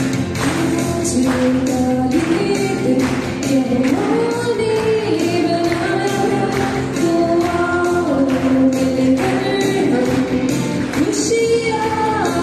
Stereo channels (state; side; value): identical; both; correlation 1.00